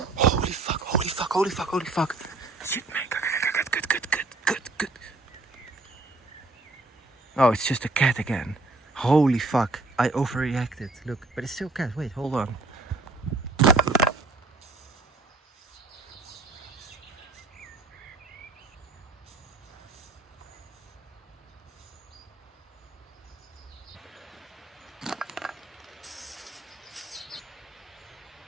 Holy fuck, holy fuck, holy fuck, holy fuck. Shit, man. Good. Oh, it's just a cat again. Holy fuck. I overreacted. Look, but it's still a cat. Wait, hold on.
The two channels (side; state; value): left; quieter; 3.4 dB